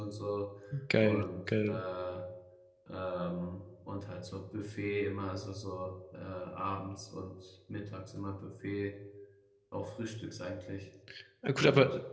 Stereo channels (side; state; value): both; identical; correlation 1.00